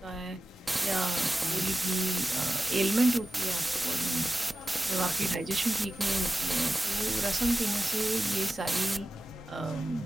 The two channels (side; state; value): both; normal; correlation 0.93